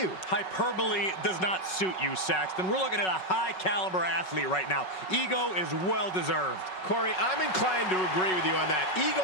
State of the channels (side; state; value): right; late; 5.4 ms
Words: Hyperbole does not suit you, Saxton. We're looking at a high-caliber athlete right now. Ego is well-deserved. Corey, I'm inclined to agree with you on that. Ego